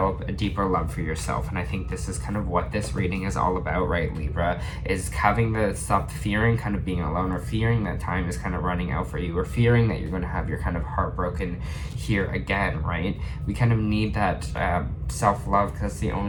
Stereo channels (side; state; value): both; identical; correlation 1.00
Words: a deeper love for yourself? And I think this is kind of what this reading is all about, right, Libra? Is having to stop fearing kind of being alone, or fearing that time is kind of running out for you, or fearing that you're going to have your kind of heart broken here again, right? We kind of need that self-love, because the